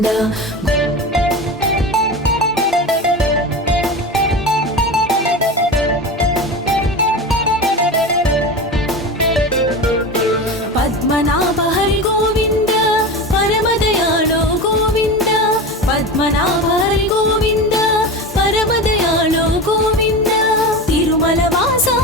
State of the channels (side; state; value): both; normal; correlation 0.26